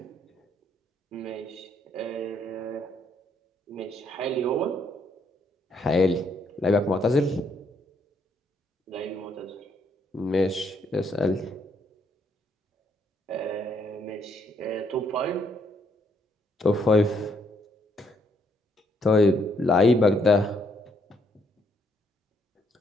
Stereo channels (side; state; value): both; normal; correlation 0.72